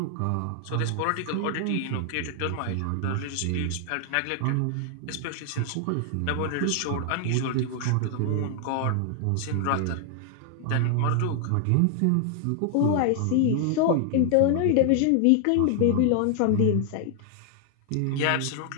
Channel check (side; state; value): both; different; correlation 0.00